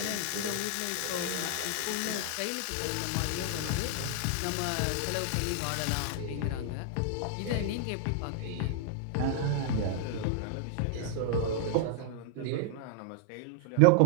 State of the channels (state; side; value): different; both; correlation 0.00